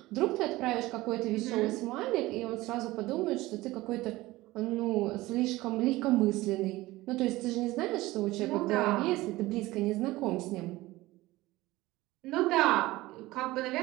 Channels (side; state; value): left; quieter; 18.6 dB